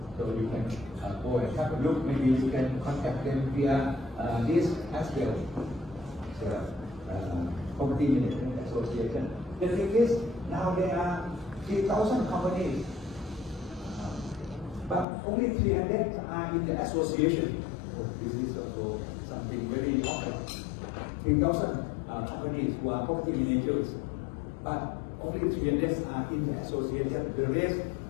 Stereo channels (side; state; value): right; drops out; at 15.1 s